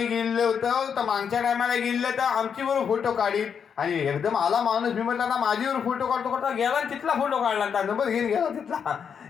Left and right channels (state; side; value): quieter; right; 7.1 dB